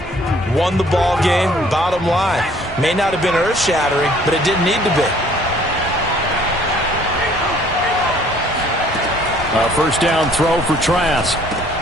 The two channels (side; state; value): both; normal; correlation 0.58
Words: won the ball game. Bottom line, may not have been earth-shattering, but it didn't need to be. A first down throw for Trask.